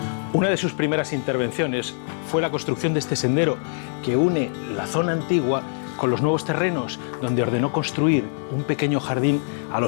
Una de sus primeras intervenciones fue la construcción de este sendero que une la zona antigua con los nuevos terrenos, donde ordenó construir un pequeño jardín a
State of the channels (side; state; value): right; silent; 63 dB below the other